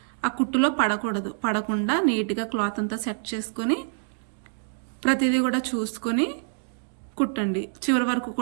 ఆ కుట్టులో పడకుండా నీట్గా క్లాత్ అంతా సెట్ చేసుకొని ప్రతిదీ కూడా చూసుకొని కుట్టండి. చివరి వరకు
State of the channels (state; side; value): silent; left; digital silence